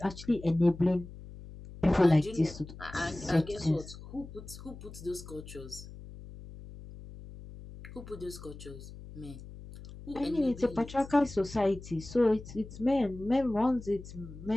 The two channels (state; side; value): noise; left; hum, 15 dB below the sound